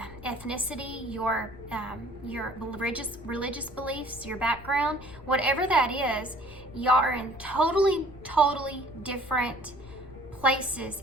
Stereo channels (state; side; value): noise; left; rumble, 18 dB below the sound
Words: ethnicity, your religious beliefs, your background, whatever that is, y'all are in totally different places